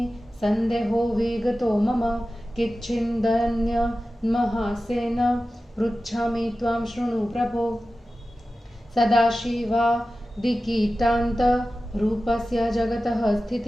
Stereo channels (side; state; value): both; normal; correlation 0.95